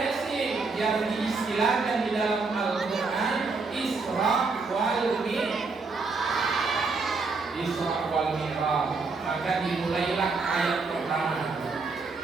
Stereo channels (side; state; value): left; quieter; 4.2 dB